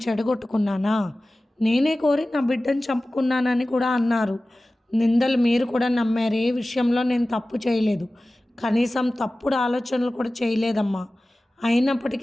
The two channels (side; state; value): both; normal; correlation 0.97